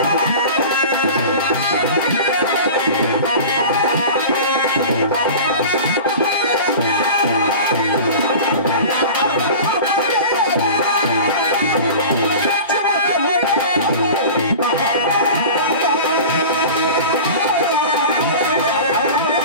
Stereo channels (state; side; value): inverted; both; correlation -0.35